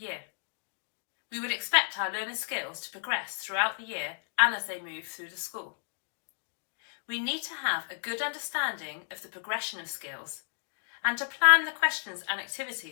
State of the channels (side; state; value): right; silent; digital silence